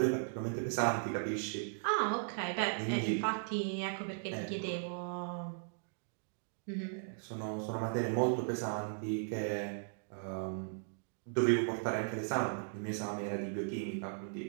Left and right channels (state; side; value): silent; left; digital silence